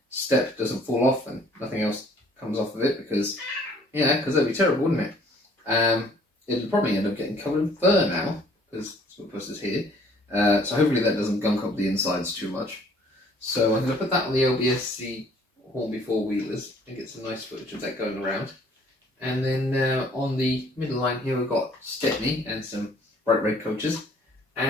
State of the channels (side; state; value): both; normal; correlation 0.58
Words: step doesn't fall off and nothing else comes off of it, because, yeah, because that'd be terrible, wouldn't it? It'll probably end up getting covered in fur now, because Smutpuss is here. So hopefully that doesn't gunk up the insides too much. So I'm going to put that on the lb&scr Hornby four-wheelers and get some nice footage of that going around. And then on the middle line here we've got Stepney and some bright red coaches.